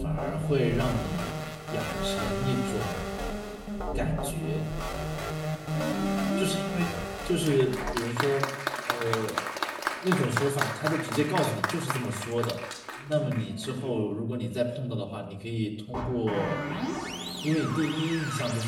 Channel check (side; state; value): both; identical; correlation 1.00